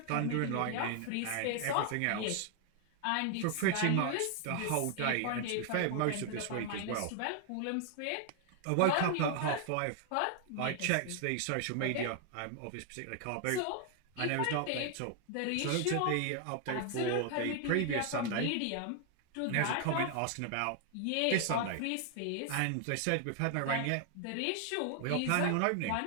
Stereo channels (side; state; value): both; different; correlation 0.00